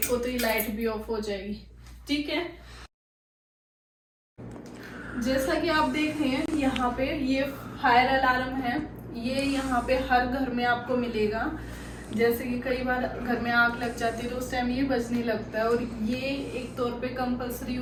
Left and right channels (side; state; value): both; identical; correlation 1.00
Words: को तो ये लाइट भी ऑफ हो जाएगी। ठीक है, जैसा कि आप देख रहे हैं यहाँ पे ये फायर अलार्म है। ये यहाँ पे हर घर में आपको मिलेगा। जैसे कि कई बार घर में आग लग जाती है तो उस टाइम ये बजने लगता है, और ये एक तौर पे कंपलसरी